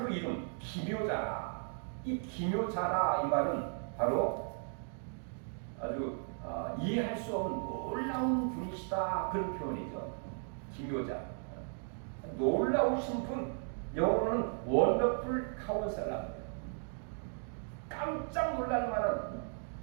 이름 기묘자라. 이 기묘자라 이 말은 바로 아주 이해할 수 없는 놀라운 분이시다, 그런 표현이죠. 기묘자, 놀라우신 분, 영어로는 원더풀 카운셀러입니다. 깜짝 놀랄 만한,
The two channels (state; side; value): silent; left; 54 dB below the other